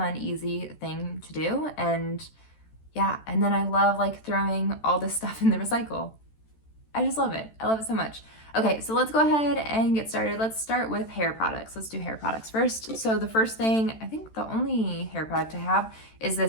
easy thing to do, and yeah, and then I love throwing all this stuff in the recycle. I just love it. I love it so much. Okay, so let's go ahead and get started. Let's start with hair products. Let's do hair products first. So the first thing, I think the only hair product I have is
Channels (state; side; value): late; right; 13 ms